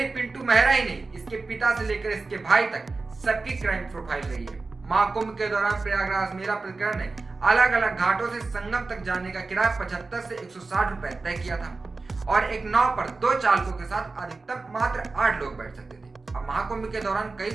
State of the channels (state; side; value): quieter; left; 3.8 dB